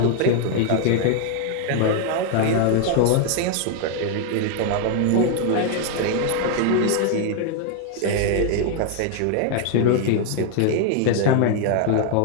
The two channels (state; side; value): different; both; correlation 0.00